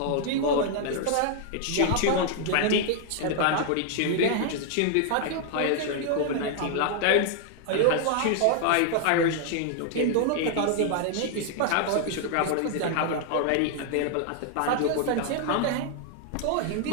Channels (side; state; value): both; different; correlation 0.00